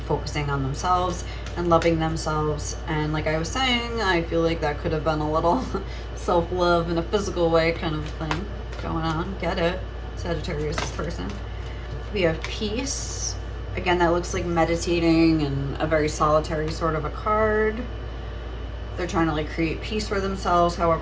focusing on themselves and loving themselves. And like I was saying, I feel like that could have been a little self-love in a physical way kind of thing going on. Get it, Sagittarius, this person. We have peace. Again, that looks like meditating and a very solitary sort of a card. They're trying to like create peace for themselves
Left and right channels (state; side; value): identical; both; correlation 1.00